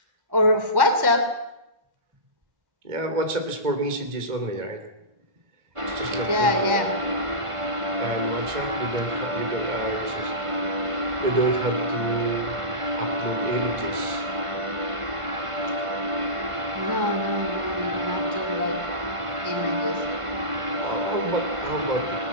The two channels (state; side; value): late; left; 1.5 ms